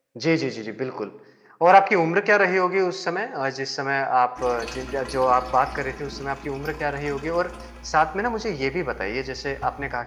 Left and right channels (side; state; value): both; identical; correlation 1.00